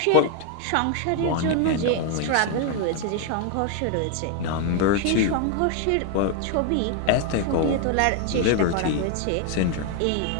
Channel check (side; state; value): both; different; correlation 0.00